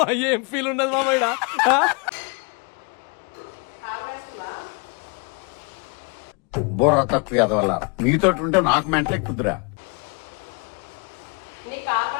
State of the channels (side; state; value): right; quieter; 34.2 dB